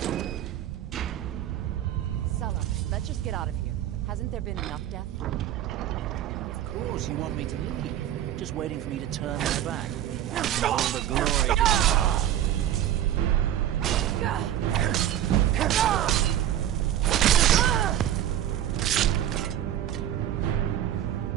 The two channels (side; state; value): left; quieter; 11.6 dB